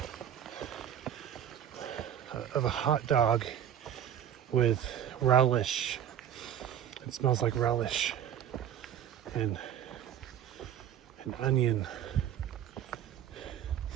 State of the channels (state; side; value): quieter; left; 10.0 dB